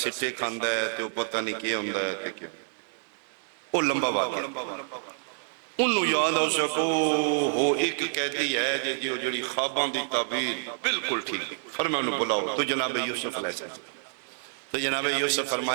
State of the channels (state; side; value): silent; left; 59 dB below the other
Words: سٹے کھاندا ہے تے او پتہ نہیں کی ہوندا ہے تے کہ او لمبا واقعہ انہوں یاد ہو سکو وہ ایک قیدی ہے جو جڑی خواباں دی تعبیر بالکل ٹھیک فرمایا انہوں بلاؤ تو جناب یوسف علیہ السلام تو جناب یوسف